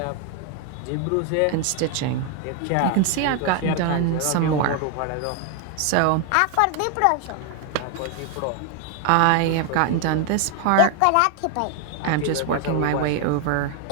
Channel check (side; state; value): both; different; correlation 0.00